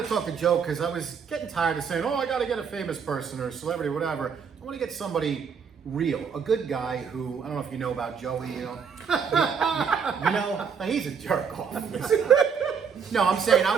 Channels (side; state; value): left; quieter; 6.5 dB